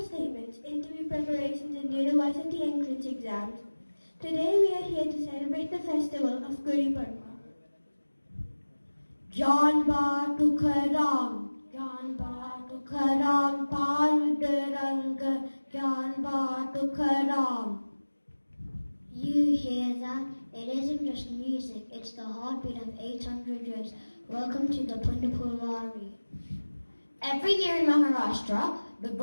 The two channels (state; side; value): inverted; both; correlation -1.00